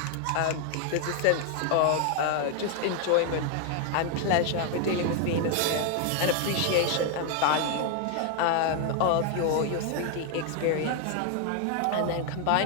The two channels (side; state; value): both; different; correlation 0.00